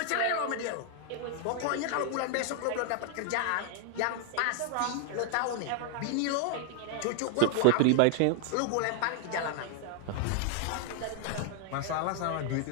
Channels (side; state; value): both; different; correlation 0.00